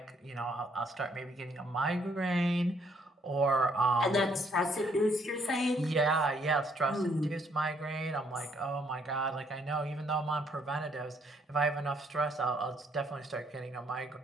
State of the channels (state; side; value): normal; both; correlation 0.68